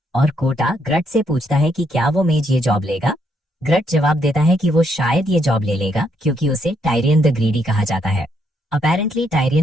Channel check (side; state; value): both; normal; correlation 0.74